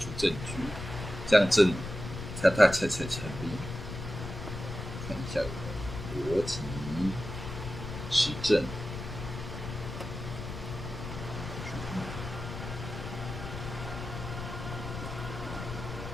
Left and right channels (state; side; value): noise; left; rumble, 8 dB below the sound